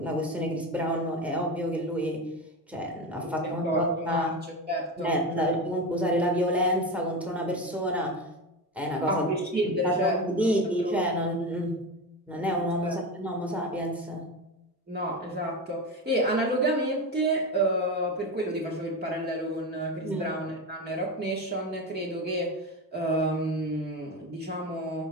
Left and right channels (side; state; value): both; normal; correlation 0.21